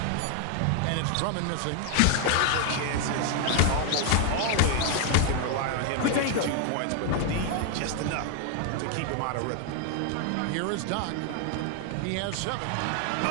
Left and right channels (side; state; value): both; different; correlation 0.00